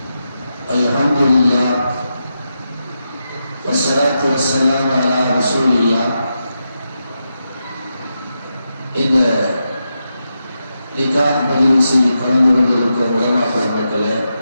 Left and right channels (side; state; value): both; inverted; correlation -0.87